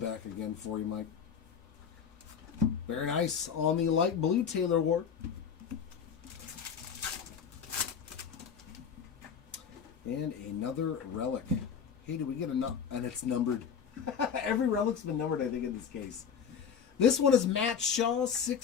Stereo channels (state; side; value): quieter; right; 7.1 dB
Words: again for you, Mike. Very nice on the light blue Taylor Ward. And another relic. Hey, do we get enough? And it's numbered. Every relic's been numbered, I think, in this case. This one is Matt Shaw,